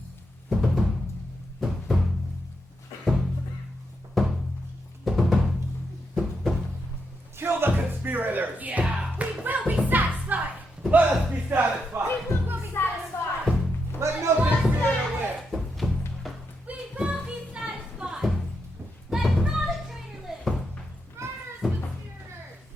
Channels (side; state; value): both; normal; correlation 0.82